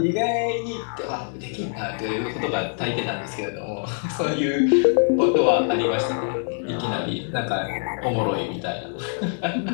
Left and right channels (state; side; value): silent; right; 62 dB below the other